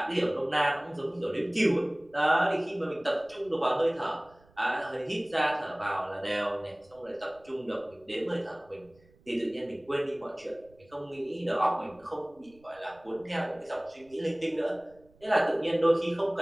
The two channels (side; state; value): right; noise; rumble, 29 dB below the sound